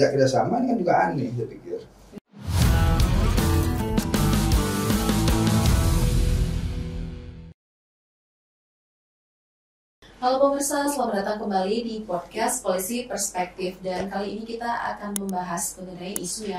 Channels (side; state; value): both; identical; correlation 1.00